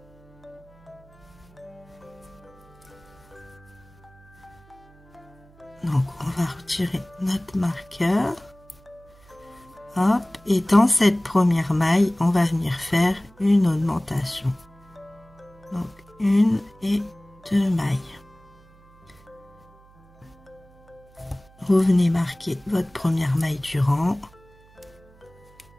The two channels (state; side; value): noise; right; hum, 27 dB below the sound